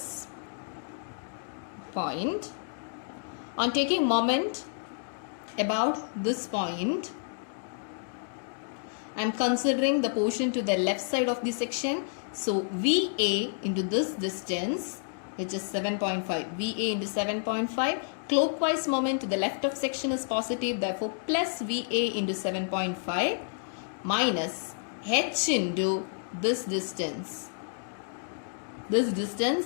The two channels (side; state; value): right; silent; digital silence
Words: point. On taking moment about this point, I am considering the portion to the left side of the section. So VA into this distance, which is 7.5. VA into 7.5. Clockwise moment to the left of section is positive. Therefore, plus VA into 7.5 minus H into this distance. This distance